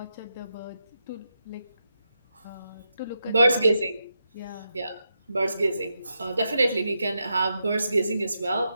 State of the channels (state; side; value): inverted; both; correlation -0.85